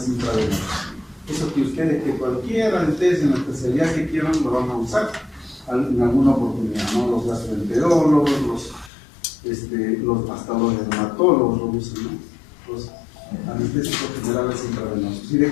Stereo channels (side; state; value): right; drops out; at 8.9 s